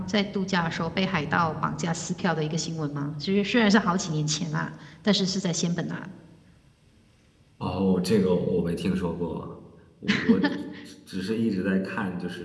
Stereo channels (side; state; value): both; identical; correlation 1.00